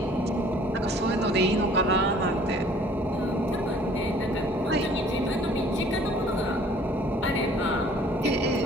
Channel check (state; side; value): normal; both; correlation 0.54